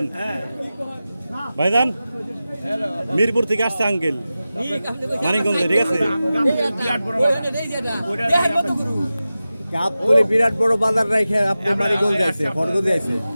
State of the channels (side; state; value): both; inverted; correlation -0.95